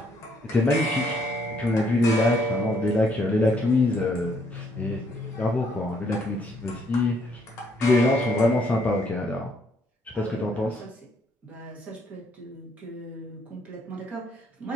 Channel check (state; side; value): normal; both; correlation 0.69